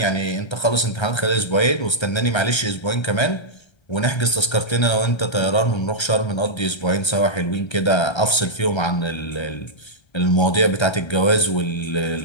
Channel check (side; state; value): right; late; 1.3 ms